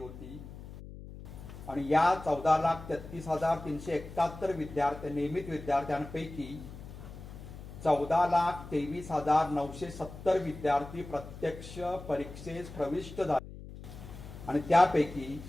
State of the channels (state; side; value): noise; left; hum, 14 dB below the sound